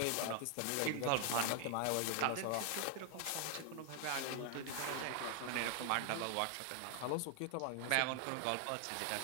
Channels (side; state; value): both; different; correlation 0.00